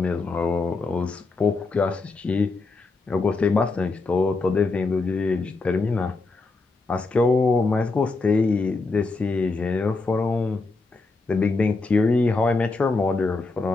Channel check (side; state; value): right; quieter; 3.7 dB